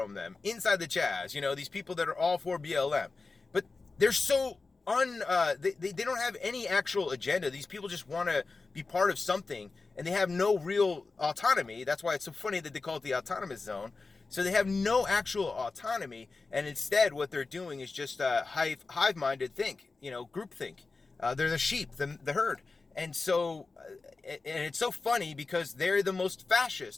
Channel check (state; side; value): quieter; right; 3.9 dB